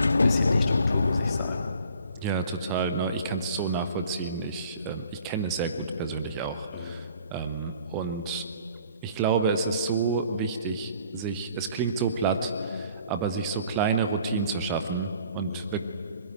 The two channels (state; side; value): inverted; both; correlation -0.54